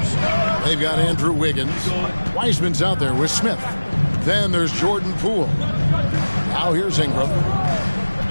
They've got Andrew Wiggins. Wiseman's out there with Smith. Then there's Jordan Poole. Now here's Ingram.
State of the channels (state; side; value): inverted; both; correlation -1.00